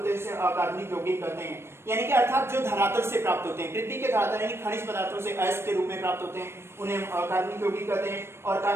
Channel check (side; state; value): left; late; 0.12 ms